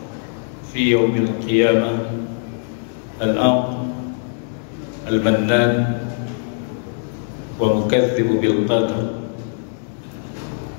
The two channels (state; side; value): silent; right; digital silence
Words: في يوم القيامة الأعظم المنان ومكذب بالقدر.